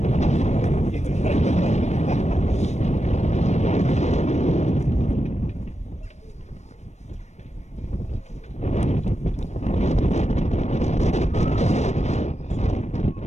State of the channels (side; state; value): right; late; 0.33 ms